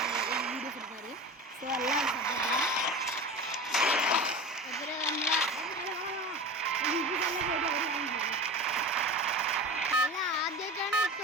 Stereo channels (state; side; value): normal; both; correlation 0.32